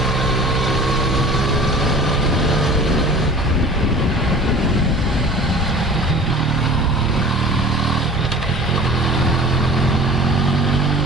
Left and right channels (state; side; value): normal; both; correlation 0.43